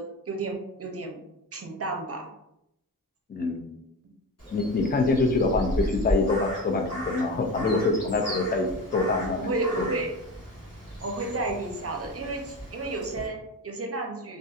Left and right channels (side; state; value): both; normal; correlation 0.27